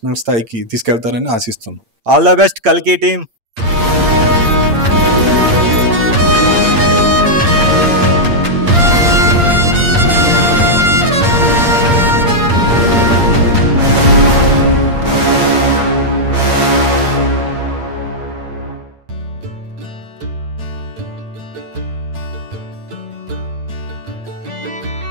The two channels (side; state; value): left; late; 8.7 ms